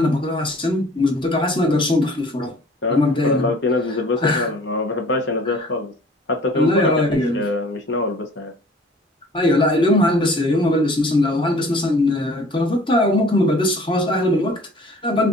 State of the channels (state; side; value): normal; both; correlation 0.50